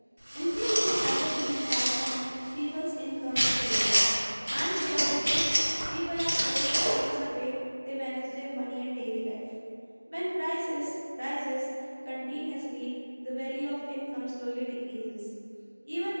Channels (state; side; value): inverted; both; correlation -1.00